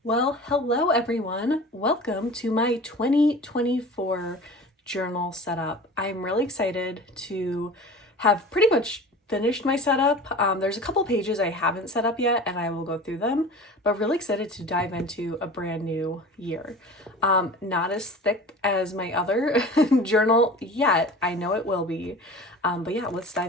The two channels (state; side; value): normal; both; correlation 0.38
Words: Well, hello everyone. Welcome to my 2024 journal setup. I'm really excited to have pretty much finished my setup. There's a couple pages I haven't set up yet and I will go through them, but really excited to dive into a brand new year. Not as thick as my other journal yet. I know it will be, but yeah, let's